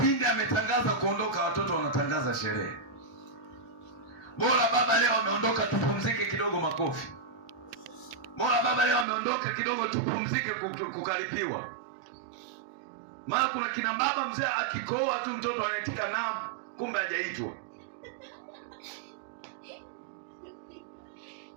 ametangaza kuondoka, watoto wanatangaza sherehe. Bora baba leo ameondoka, tupumzike kidogo, makofi. Bora baba leo ameondoka kidogo, tupumzike, kukaripiwa. Maana kuna kina baba mzee akikoa tu mtoto anaitika naam, kumbe hajaitwa.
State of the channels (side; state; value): left; drops out; at 9.1 s